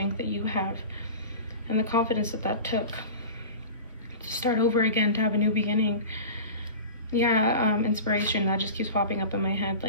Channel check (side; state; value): both; inverted; correlation -0.34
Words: that you have and the confidence that took to start over again, to have a new beginning. Yeah, inspiration, that just keeps popping up in my head.